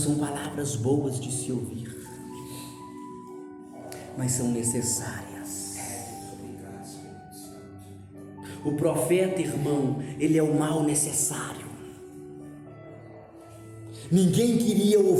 palavras boas de se ouvir, mas são necessárias. O profeta, irmão, ele é o mal necessário. Ninguém queria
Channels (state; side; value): identical; both; correlation 1.00